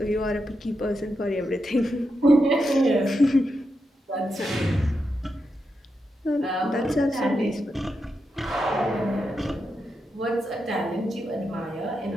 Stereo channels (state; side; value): normal; both; correlation 0.86